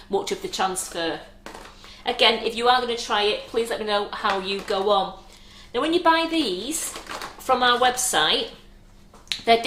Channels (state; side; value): identical; both; correlation 1.00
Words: much of the transfer. Again, if you are going to try it, please let me know how you go on. Now, when you buy these from our website, they're